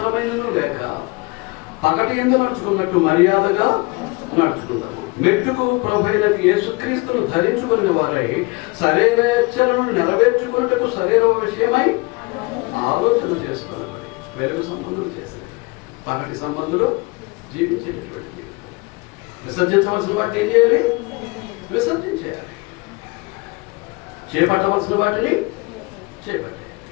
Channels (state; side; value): quieter; right; 26.6 dB